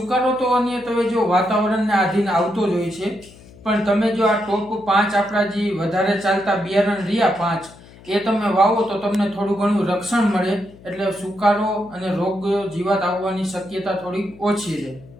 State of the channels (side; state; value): left; noise; hum, 22 dB below the sound